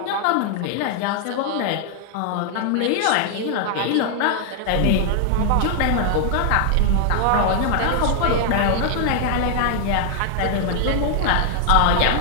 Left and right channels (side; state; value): both; different; correlation 0.00